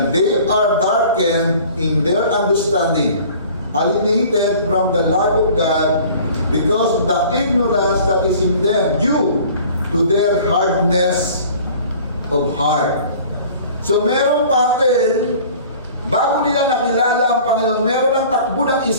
they are darkened in their understanding, alienated from the life of God because of the ignorance that is in them due to their hardness of heart. So meron pattern, bago nila nakilala ang Panginoon, meron ng takbo ng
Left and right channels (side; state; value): both; inverted; correlation -0.48